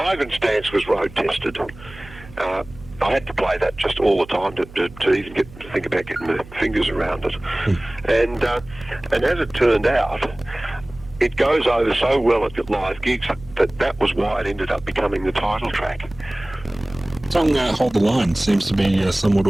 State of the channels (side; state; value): right; noise; hum, 19 dB below the sound